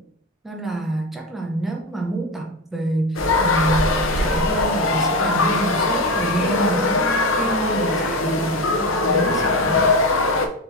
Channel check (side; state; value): both; normal; correlation 0.17